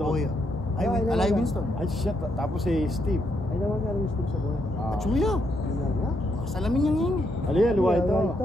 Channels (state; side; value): normal; both; correlation 0.77